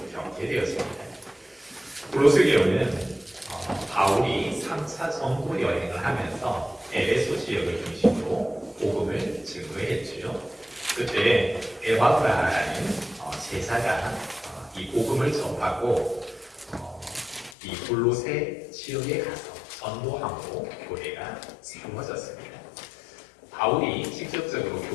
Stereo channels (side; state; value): right; drops out; at 17.6 s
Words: 겪게 되었습니다. 골로새 교회는 바울이 3차 전도 여행을 하면서 에베소 지역을 중심으로 복음을 증거했지요. 그때 에바브라라는 제사가 이 복음을 접하고 이 골로새 지역에 가서 전도함으로 교회가 세워졌습니다. 바울이 직접적으로